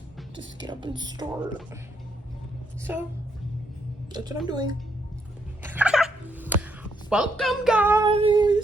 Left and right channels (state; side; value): normal; both; correlation 0.75